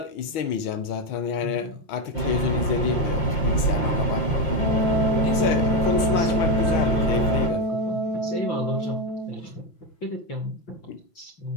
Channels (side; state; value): right; late; 6.2 ms